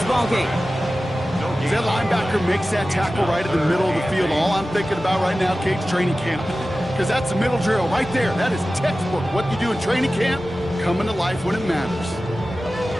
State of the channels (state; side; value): normal; both; correlation 0.95